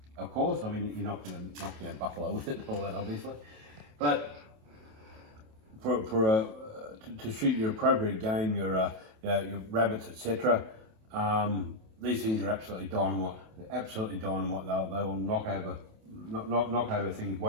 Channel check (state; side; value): late; left; 27 ms